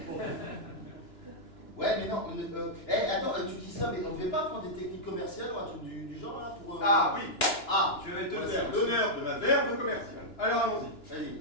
Ouais, mais non, attends, tu dis ça, mais on devait pas prendre des techniques commerciales ou un truc du genre, là, pour... Ah oui, Ah, je vais te Ouais, faire c'est- l'honneur de ma verve commerciale. Alors allons-y.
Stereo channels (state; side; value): late; right; 2.9 ms